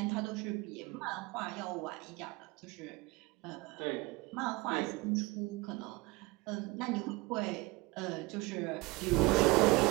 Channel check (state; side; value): quieter; left; 22.9 dB